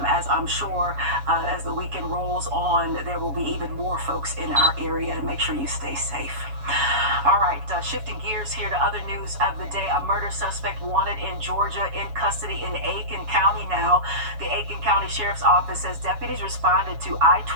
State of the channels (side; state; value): left; late; 7.1 ms